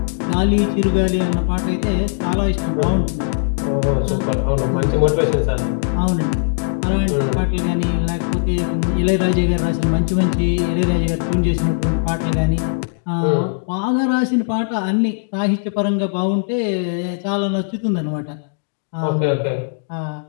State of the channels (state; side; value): silent; right; digital silence